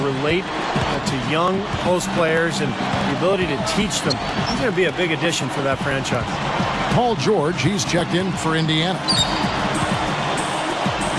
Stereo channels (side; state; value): both; identical; correlation 1.00